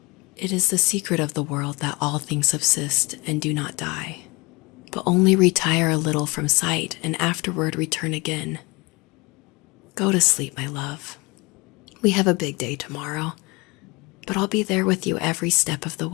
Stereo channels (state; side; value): quieter; right; 26.1 dB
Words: It is the secret of the world that all things subsist and do not die, but only retire a little from sight and afterward return again. Go to sleep, my love. We have a big day tomorrow, but I'll be there with you every step of the